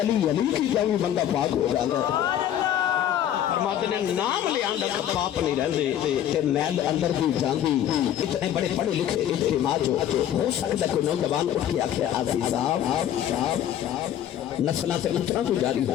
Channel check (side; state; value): right; quieter; 10.8 dB